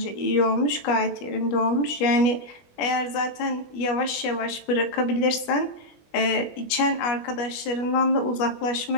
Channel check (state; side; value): late; right; 21 ms